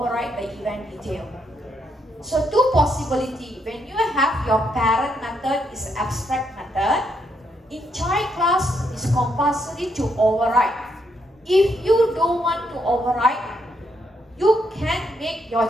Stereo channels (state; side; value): normal; both; correlation 0.76